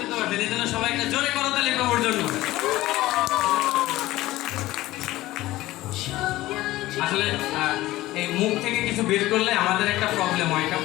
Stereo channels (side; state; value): right; quieter; 17.0 dB